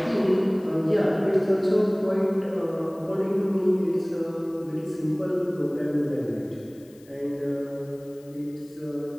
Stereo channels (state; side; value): noise; left; hiss, 28 dB below the sound